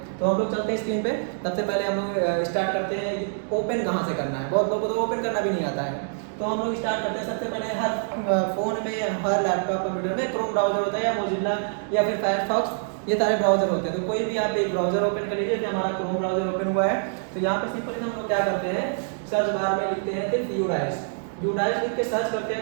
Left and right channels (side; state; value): left; silent; digital silence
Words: तो हम लोग चलते हैं स्क्रीन पे। सबसे पहले हम लोग स्टार्ट करते हैं ओपन कहाँ से करना है। बहुत लोगों को तो ओपन करना भी नहीं आता है, तो हम लोग स्टार्ट करते हैं। सबसे पहले हर फ़ोन में, हर लैपटॉप कंप्यूटर में क्रोम ब्राउजर होता है या मोजिल्ला या फिर फायरफॉक्स, ये सारे ब्राउजर होते हैं। तो कोई भी आप एक ब्राउजर ओपन कर लीजिए, जैसे हमारा क्रोम ब्राउजर ओपन हुआ है तो यहाँ पे सिंपली हम लोग क्या करते हैं, सर्च बार में लिखते हैं सिर्फ यूडाइस लिख के सर्च करते हैं